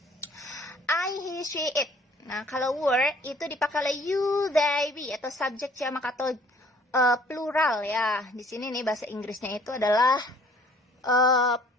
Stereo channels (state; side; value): normal; both; correlation 0.57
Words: I, he, she, it. Nah, kalau were itu dipakai oleh you, they, we atau subjek jamak atau plural ya. Di sini nih bahasa Inggrisnya itu adalah